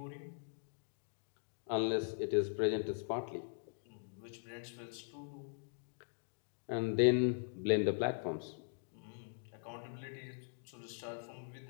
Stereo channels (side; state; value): right; silent; digital silence